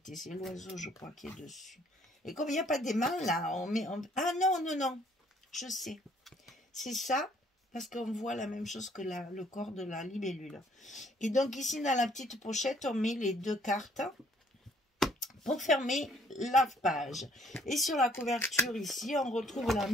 c'est l'oiseau je crois qui est dessus. Et comme il n'y a pas d'aimant là, ah non, je sais, c'est ça, parce qu'on voit la même chose que le corps de la libellule. Et donc ici dans la petite pochette on met les deux cartes pour fermer la page. Et sur la couverture ici, on retrouve la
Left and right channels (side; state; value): both; normal; correlation 0.63